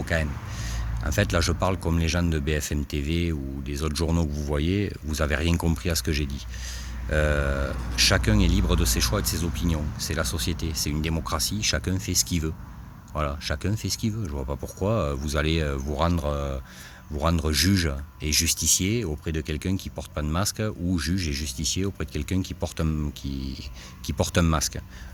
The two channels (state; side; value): identical; both; correlation 1.00